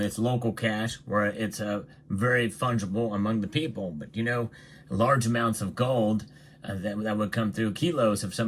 local cash where it's very fungible among the people. But, large amounts of gold that would come through, kilos of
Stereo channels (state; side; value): identical; both; correlation 1.00